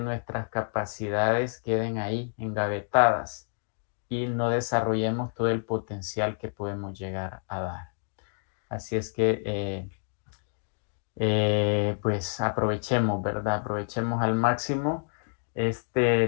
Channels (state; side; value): silent; right; digital silence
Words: capacidades queden ahí, engavetadas, y no desarrollemos todo el potencial que podemos llegar a dar. Así es que, pues aprovechemos, ¿verdad? Aprovechemos al máximo